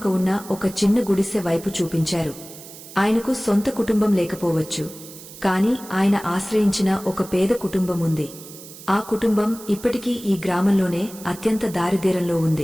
ఉన్న ఒక చిన్న గుడిసె వైపు చూపించారు. ఆయనకు సొంత కుటుంబం లేకపోవచ్చు, కాని ఆయన ఆశ్రయించిన ఒక పేద కుటుంబం ఉంది. ఆ కుటుంబం ఇప్పటికీ ఈ గ్రామంలోనే అత్యంత దారిద్ర్యంలో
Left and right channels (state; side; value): noise; right; hiss, 16 dB below the sound